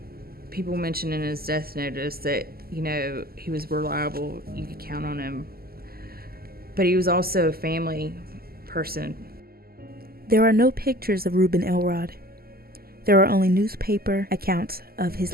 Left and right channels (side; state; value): left; late; 0.44 ms